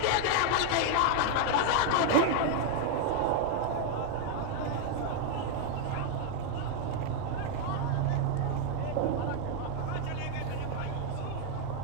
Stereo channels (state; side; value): different; both; correlation 0.00